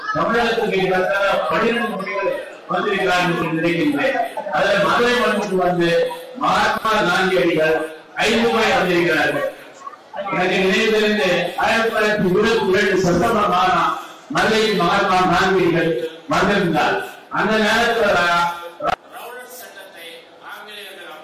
தமிழகத்துக்கு 12 முறைகள் வந்திருக்கிறார் என்று நினைக்கின்றேன். அதுல மதுரை மண்ணுக்கு வந்து மகாத்மா காந்தியடிகள் 5 முறை வந்திருக்கிறார்கள். எனக்கு நினைவு தெரிந்து 1922 செப்டம்பர் மாதம் மதுரையில் மகாத்மா காந்தியடிகள் வந்திருந்தார். அந்த நேரத்தில் ரவுலட் சட்டத்தை ஆங்கிலேயர்கள்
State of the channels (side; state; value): both; identical; correlation 1.00